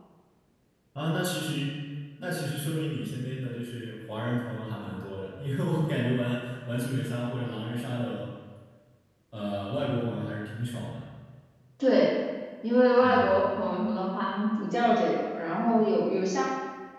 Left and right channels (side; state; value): both; identical; correlation 1.00